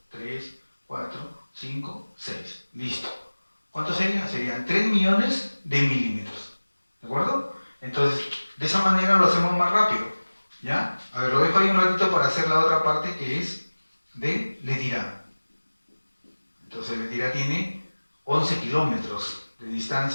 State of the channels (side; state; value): both; inverted; correlation -1.00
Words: 3, 4, 5, 6. Listo. ¿Cuánto sería? Serían 3 millones de milímetros. ¿De acuerdo? Entonces, de esa manera lo hacemos más rápido. ¿Ya? A ver, lo dejo ahí un ratito para hacer la otra parte que es de Letirá. Entonces, Letirá tiene 11 kilómetros de